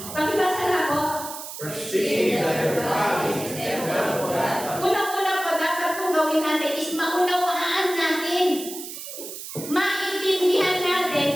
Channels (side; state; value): right; noise; hiss, 10 dB below the sound